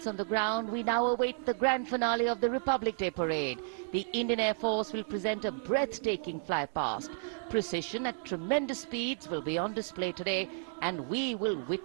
on the ground, we now await the grand finale of the Republic Day Parade. The Indian Air Force will present a breathtaking flypast. Precision at tremendous speeds will be on display today, and we will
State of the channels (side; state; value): left; silent; digital silence